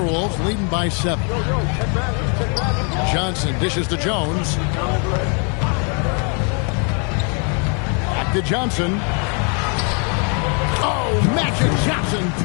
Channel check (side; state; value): right; quieter; 38.0 dB